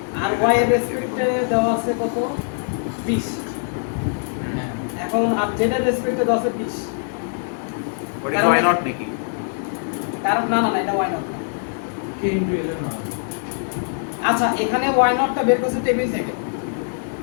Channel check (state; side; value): silent; right; digital silence